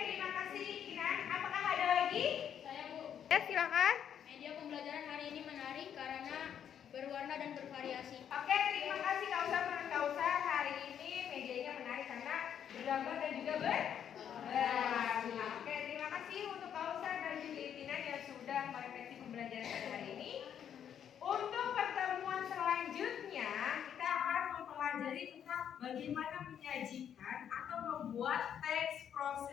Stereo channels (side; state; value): right; quieter; 9.0 dB